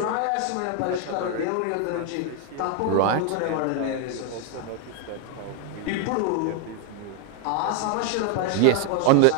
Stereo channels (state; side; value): different; both; correlation 0.01